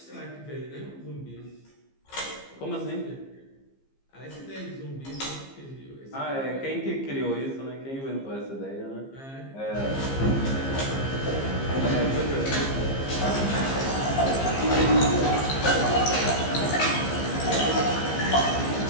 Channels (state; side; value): late; right; 15 ms